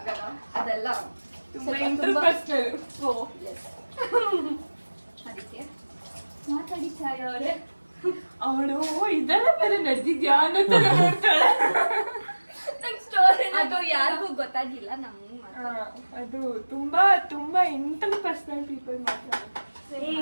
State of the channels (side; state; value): both; inverted; correlation -1.00